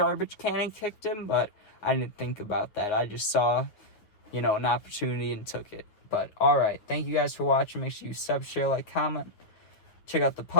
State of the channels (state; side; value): late; right; 9.4 ms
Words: can and kicked him, but I didn't think about that. I just saw, an opportunity and took it. But, alright, thank you guys for watching. Make sure you sub, share, like, comment. Check out the